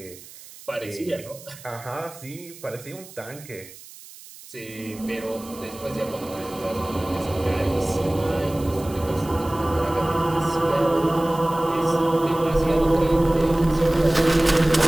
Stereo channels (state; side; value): noise; right; hiss, 18 dB below the sound